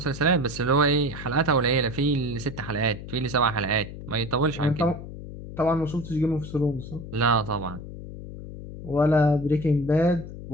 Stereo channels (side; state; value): left; noise; hum, 11 dB below the sound